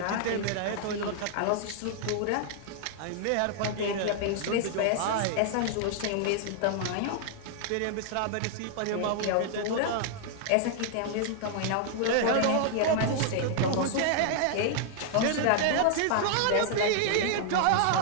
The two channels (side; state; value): both; different; correlation -0.01